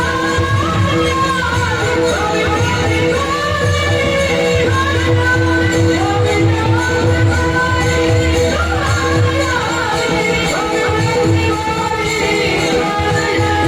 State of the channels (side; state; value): both; identical; correlation 1.00